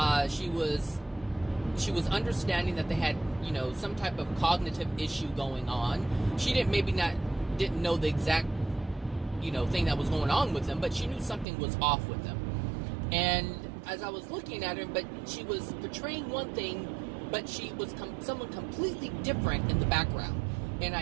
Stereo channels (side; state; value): left; drops out; at 11.5 s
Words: She was understanding that they had, some type of cognitive issue going on. She didn't know the exact, thing that was going on with them, but she knew something was off with them. And as I was looking at her, but she was portraying one thing, but she was someone completely different in the background. And